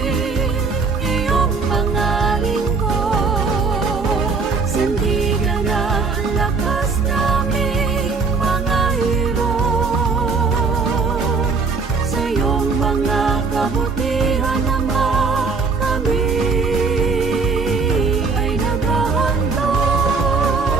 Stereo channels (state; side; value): quieter; left; 4.5 dB